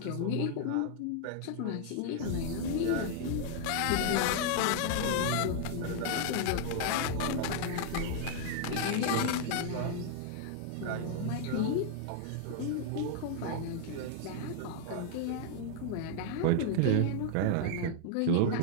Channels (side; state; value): both; different; correlation 0.00